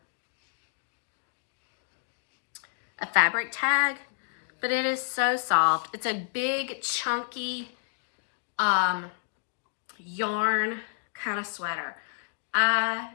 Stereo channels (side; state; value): right; silent; digital silence